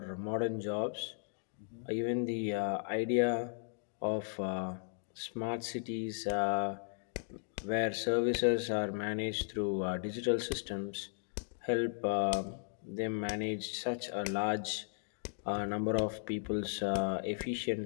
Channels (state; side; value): silent; right; digital silence